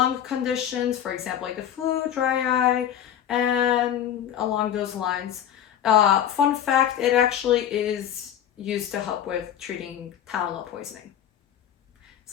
conditions, for example, like the flu, dry eye, and along those lines. Fun fact, it actually is used to help with treating Tylenol poisoning.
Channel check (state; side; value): quieter; right; 10.0 dB